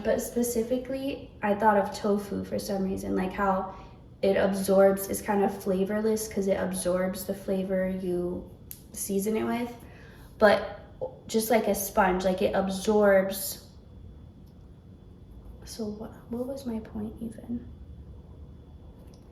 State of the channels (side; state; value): both; identical; correlation 1.00